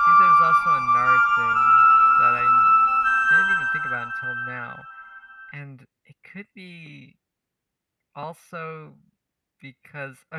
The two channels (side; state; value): both; identical; correlation 1.00